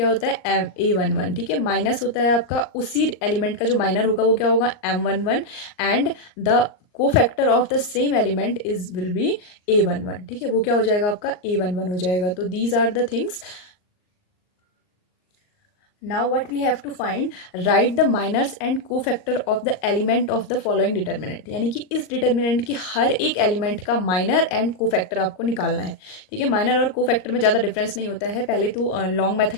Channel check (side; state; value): right; late; 39 ms